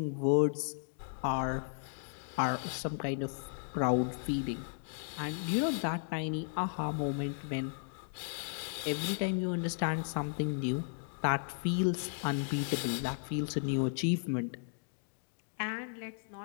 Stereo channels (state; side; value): silent; right; digital silence